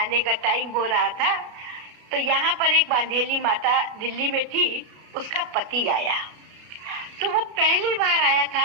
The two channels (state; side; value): late; left; 33 ms